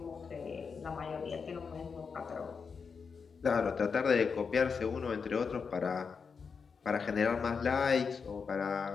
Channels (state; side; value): quieter; right; 5.6 dB